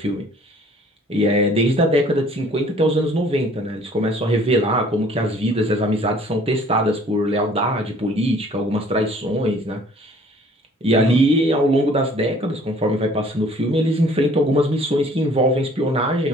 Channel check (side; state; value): both; normal; correlation 0.55